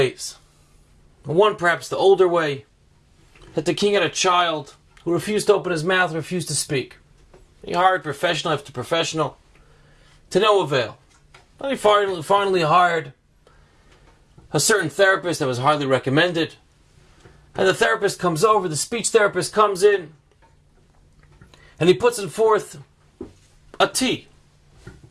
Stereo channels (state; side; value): identical; both; correlation 1.00